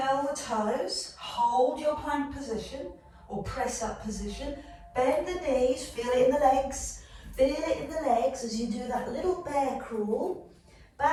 the toes, hold your plank position or press up position. Bend the knees, feel it in the legs. Feel it in the legs as you do that little bear crawl.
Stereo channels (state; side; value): identical; both; correlation 1.00